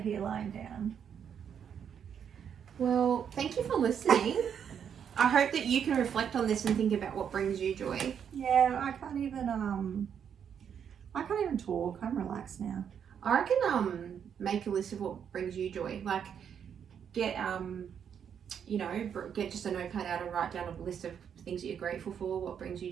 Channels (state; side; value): quieter; left; 8.0 dB